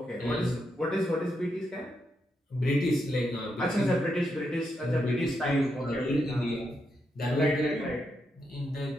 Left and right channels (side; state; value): both; normal; correlation 0.82